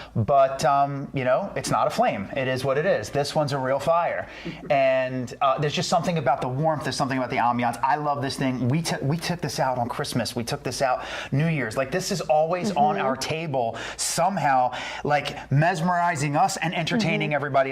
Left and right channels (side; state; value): both; identical; correlation 1.00